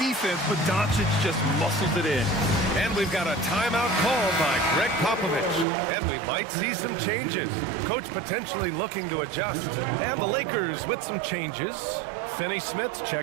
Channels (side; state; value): left; drops out; at 5.7 s